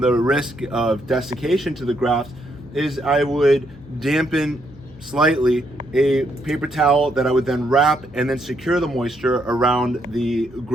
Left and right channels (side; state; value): left; noise; hum, 23 dB below the sound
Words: the risk of desiccation to the grafts is I would dampen slightly a paper towel that I would then wrap and then secure the moisture around the